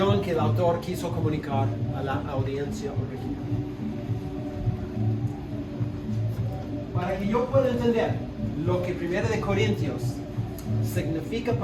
que el autor quiso comunicar a la audiencia original. Para que yo pueda entender lo que 1 de Corintios significa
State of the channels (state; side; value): identical; both; correlation 1.00